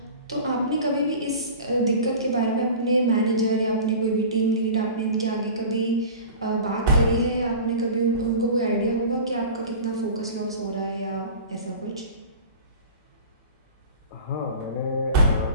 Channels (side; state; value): both; inverted; correlation -0.37